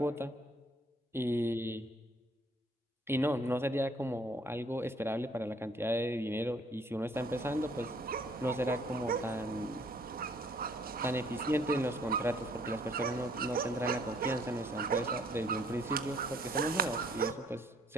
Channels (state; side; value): normal; both; correlation 0.61